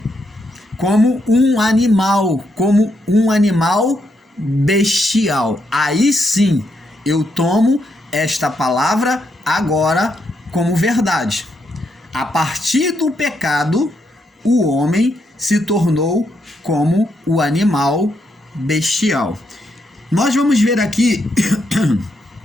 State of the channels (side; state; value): both; normal; correlation 0.79